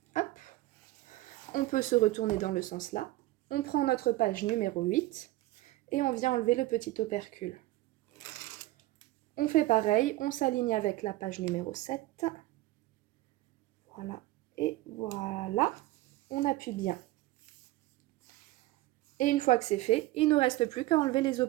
Hop, on peut se retourner dans le sens là. On prend notre page numéro 8 et on vient enlever le petit opercule. On fait pareil, on s'aligne avec la page numéro 7. Voilà, et voilà, on appuie bien. Et une fois que c'est fait, il ne nous reste plus qu'à enlever les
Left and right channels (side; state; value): left; quieter; 17.5 dB